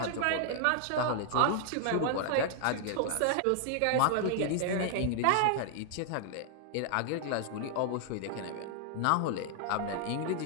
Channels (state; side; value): different; both; correlation 0.00